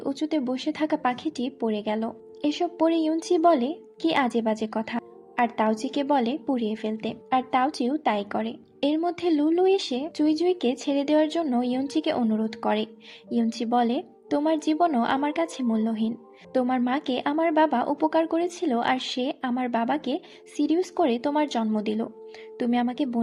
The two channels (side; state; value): both; identical; correlation 1.00